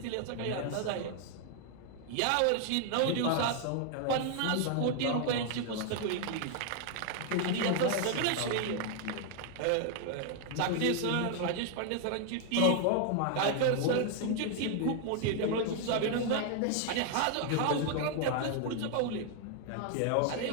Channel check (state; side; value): different; both; correlation 0.00